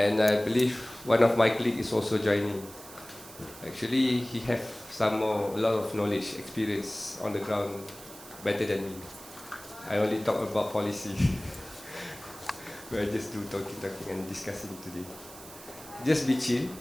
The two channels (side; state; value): right; noise; hiss, 17 dB below the sound